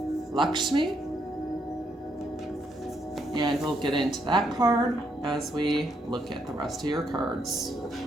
Lakshmi. And we'll get into that card as we look at the rest of your cards.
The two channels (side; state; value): both; normal; correlation 0.75